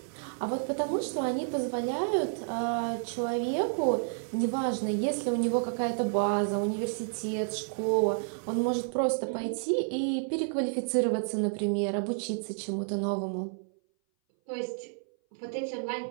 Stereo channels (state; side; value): silent; left; 58 dB below the other